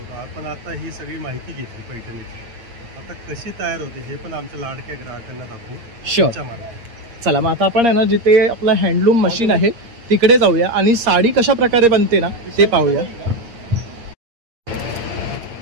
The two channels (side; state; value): left; late; 8.6 ms